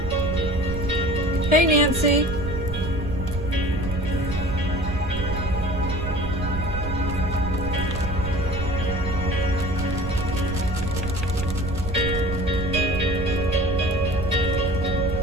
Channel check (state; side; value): noise; right; rumble, 7 dB below the sound